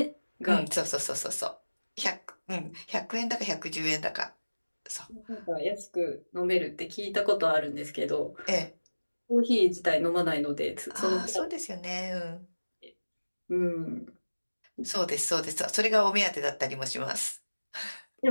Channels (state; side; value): inverted; both; correlation -1.00